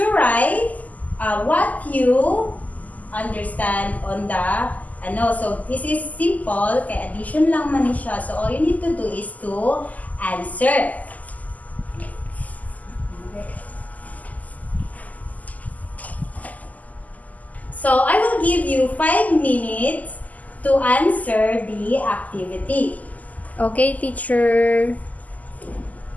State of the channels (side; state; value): right; late; 0.077 ms